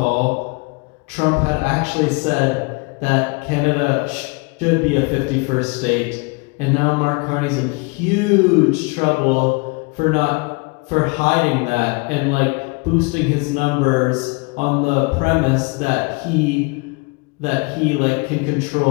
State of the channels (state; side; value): quieter; right; 29.4 dB